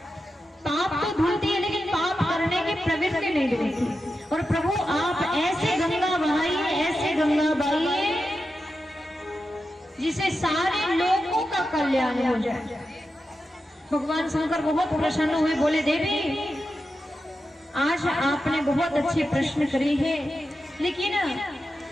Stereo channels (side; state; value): both; normal; correlation 0.90